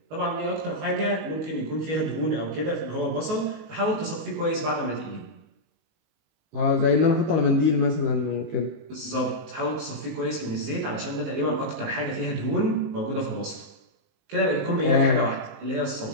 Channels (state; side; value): late; left; 19 ms